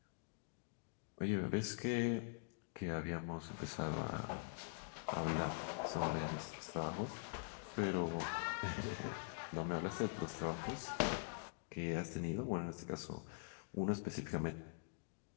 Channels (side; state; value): right; silent; digital silence